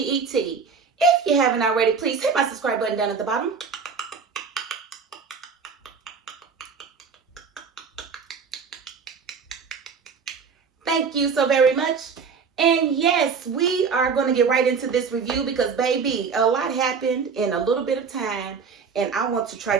If you haven't already, please hit my subscribe button down at the bottom. Thank you so very much. And yes, we are going to get right into this review because, baby, a lot happened in a little bit of time, and I want to try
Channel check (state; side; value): quieter; left; 5.6 dB